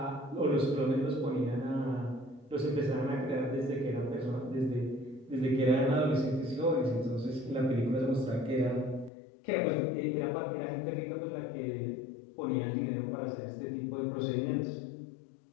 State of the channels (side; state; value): right; drops out; at 9.1 s